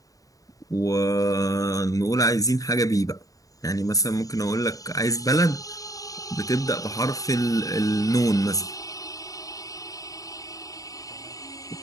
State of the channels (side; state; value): right; late; 0.17 ms